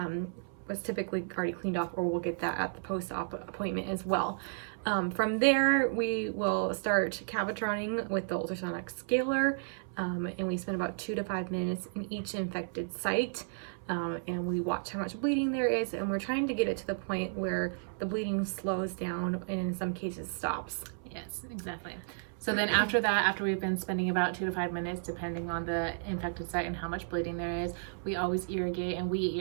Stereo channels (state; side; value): silent; left; 56 dB below the other